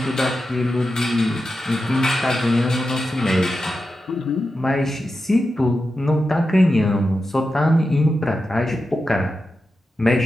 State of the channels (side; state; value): both; normal; correlation 0.90